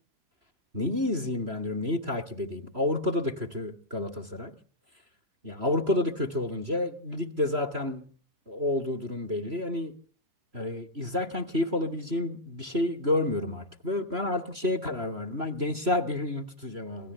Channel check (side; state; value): left; late; 3.0 ms